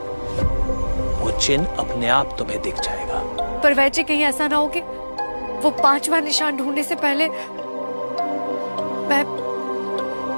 वो चिन्ह अपने आप तुम्हें दिख जाएगा। पर वैद जी, कहीं ऐसा ना हो कि वो 5वां निशान ढूंढने से पहले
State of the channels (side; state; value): both; inverted; correlation -1.00